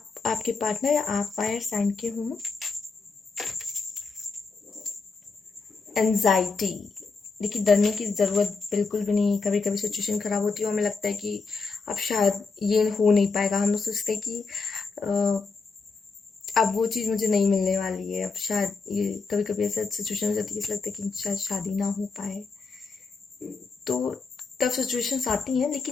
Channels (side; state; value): right; quieter; 4.4 dB